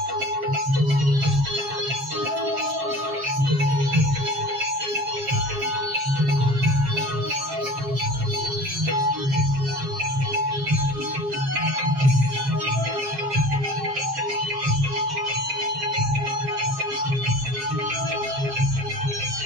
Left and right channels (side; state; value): left; late; 7.4 ms